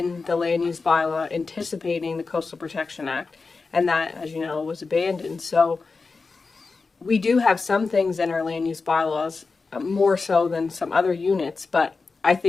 the land use bylaw anticipating the Coastal Protection Act. And that, as you know, was abandoned. So we do have some things in our land use bylaws, more so than some other units, but I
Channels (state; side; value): quieter; right; 4.3 dB